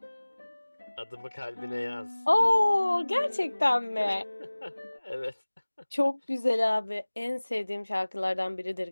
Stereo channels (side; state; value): both; inverted; correlation -1.00